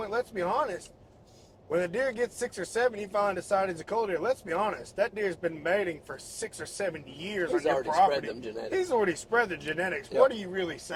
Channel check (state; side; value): identical; both; correlation 1.00